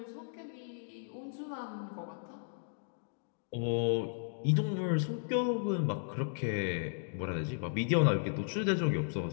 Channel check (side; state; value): right; silent; digital silence